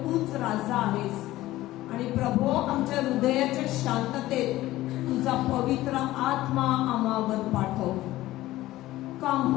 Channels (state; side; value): quieter; right; 16.3 dB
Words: तूच राजा आहेस. आणि प्रभू आमच्या हृदयाच्या शांततेत तुझा पवित्र आत्मा आम्हावर पाठव. Come